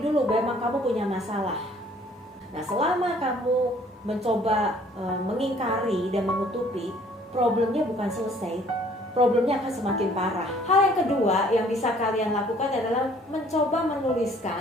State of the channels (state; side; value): normal; both; correlation 0.58